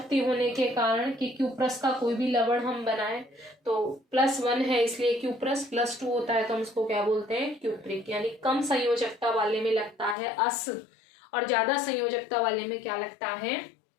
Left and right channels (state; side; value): drops out; right; at 10.2 s